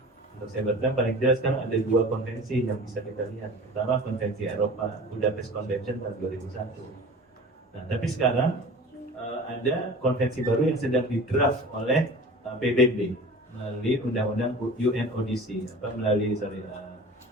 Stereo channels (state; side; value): normal; both; correlation 0.39